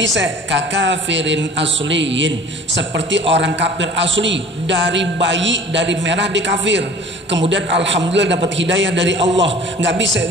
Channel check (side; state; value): both; normal; correlation 0.46